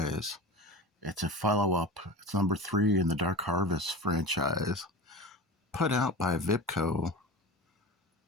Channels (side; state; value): both; normal; correlation 0.30